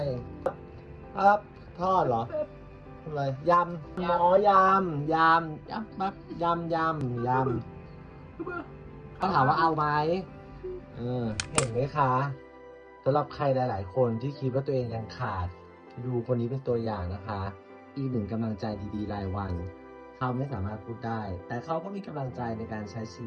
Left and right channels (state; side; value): identical; both; correlation 1.00